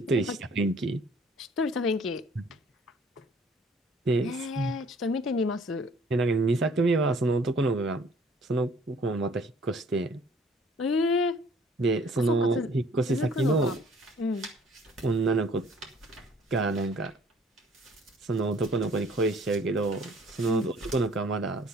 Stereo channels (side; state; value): both; normal; correlation 0.56